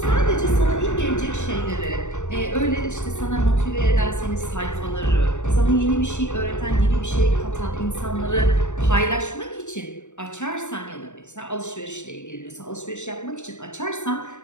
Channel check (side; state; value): right; late; 0.84 ms